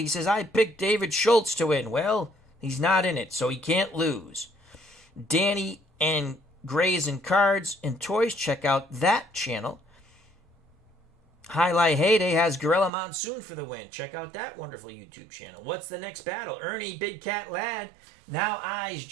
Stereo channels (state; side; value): drops out; left; at 12.9 s